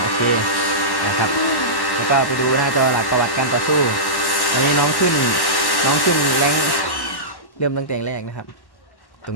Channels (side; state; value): right; late; 1.1 ms